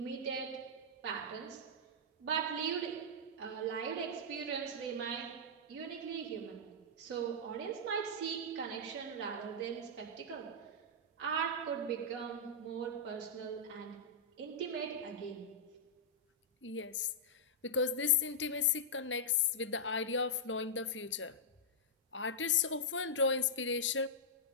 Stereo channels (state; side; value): normal; both; correlation -0.09